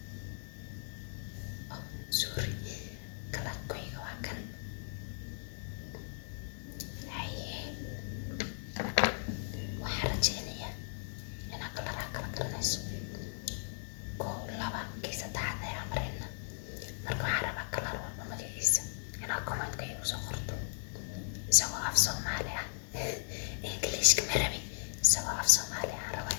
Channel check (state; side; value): silent; right; 53 dB below the other